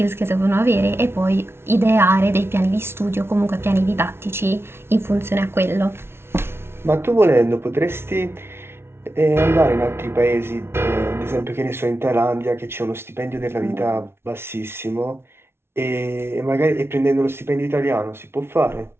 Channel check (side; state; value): left; late; 0.12 ms